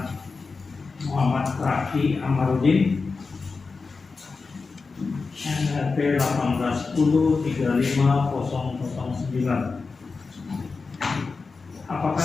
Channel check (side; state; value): right; quieter; 4.4 dB